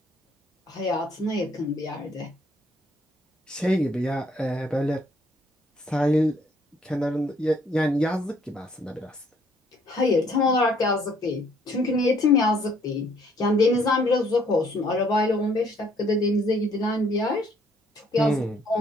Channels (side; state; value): both; normal; correlation 0.64